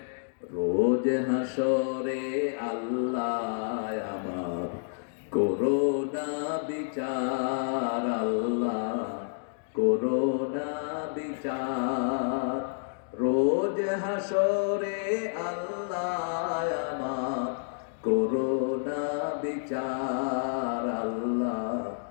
রোজ হাসরে আল্লাহ আমার করোনা বিচার, আল্লাহ করোনা বিচার। রোজ হাসরে আল্লাহ আমার করোনা বিচার, আল্লাহ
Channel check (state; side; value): silent; right; digital silence